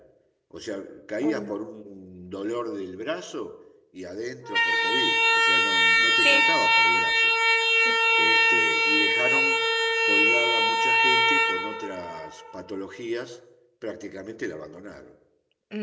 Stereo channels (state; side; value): identical; both; correlation 1.00